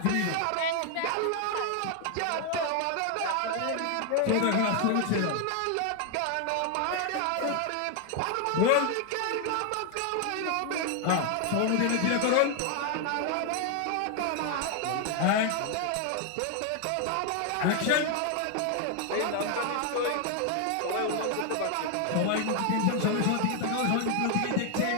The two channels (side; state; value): both; different; correlation 0.01